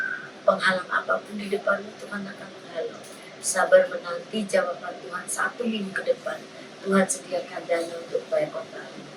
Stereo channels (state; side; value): identical; both; correlation 1.00